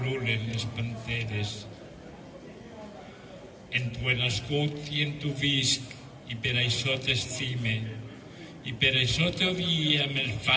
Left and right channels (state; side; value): identical; both; correlation 1.00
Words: les panteres. En tu he nascut i en tu visc, i per això t'estime, i per això t'odia amb el